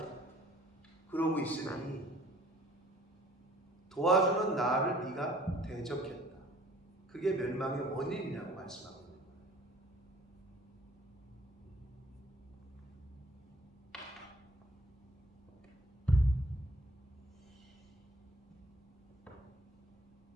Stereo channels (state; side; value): normal; both; correlation 0.56